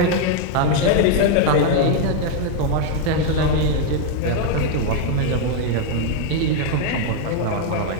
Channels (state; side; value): different; both; correlation 0.00